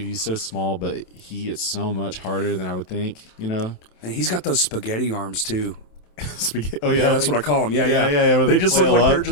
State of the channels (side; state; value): right; late; 27 ms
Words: he's so small, but he hits so much harder than I would think. You know? And he's got those spaghetti arms too. Spaghetti. Oh Yeah, that's what I call them. Yeah. where They just look flail like up. they're